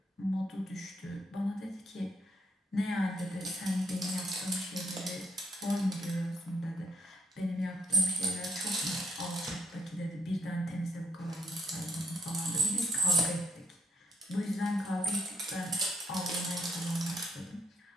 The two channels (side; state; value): both; normal; correlation 0.70